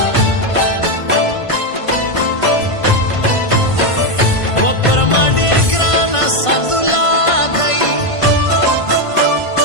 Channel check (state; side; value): late; right; 1.5 ms